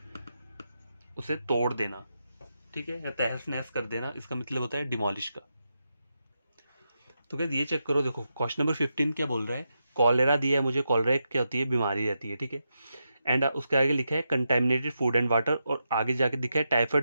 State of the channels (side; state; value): both; inverted; correlation -0.86